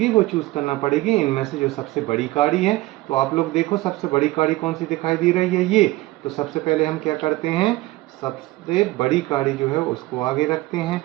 वो चूज करना पड़ेगी इनमें से जो सबसे बड़ी काड़ी है। तो आप लोग देखो, सबसे बड़ी काड़ी कौन सी दिखाई दे रही है, ये। तो सबसे पहले हम क्या करते हैं, सबसे बड़ी काड़ी जो है उसको आगे रखते हैं।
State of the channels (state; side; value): quieter; left; 19.1 dB